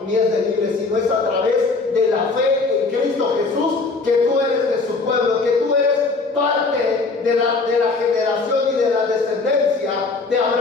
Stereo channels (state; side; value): quieter; right; 3.9 dB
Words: ni es de libre, sino es a través de la fe en Cristo Jesús que tú eres de su pueblo, que tú eres parte de la generación y de la descendencia de